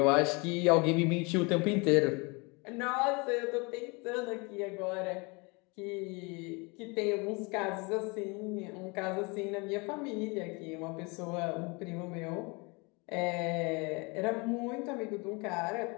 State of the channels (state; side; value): quieter; right; 28.9 dB